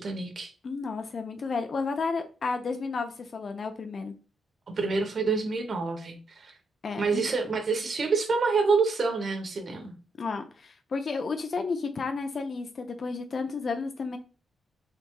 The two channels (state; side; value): normal; both; correlation 0.77